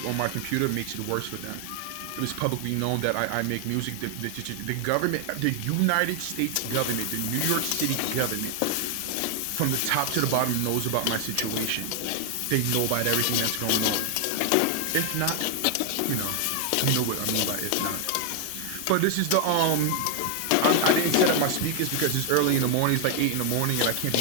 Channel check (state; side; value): different; both; correlation 0.00